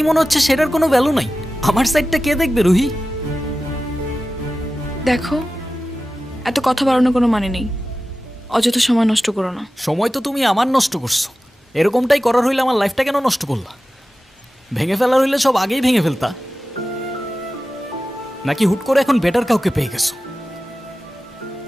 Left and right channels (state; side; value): normal; both; correlation 0.94